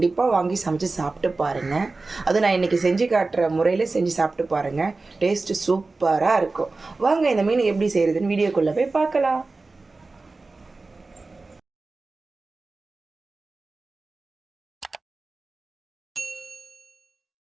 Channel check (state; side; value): quieter; left; 3.6 dB